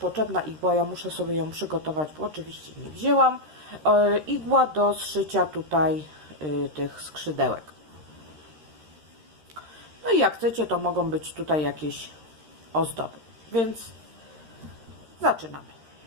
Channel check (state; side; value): late; left; 13 ms